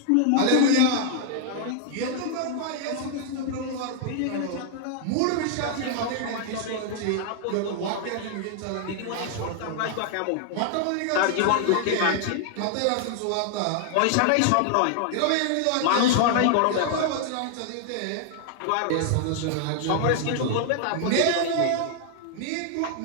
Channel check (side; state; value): both; different; correlation 0.00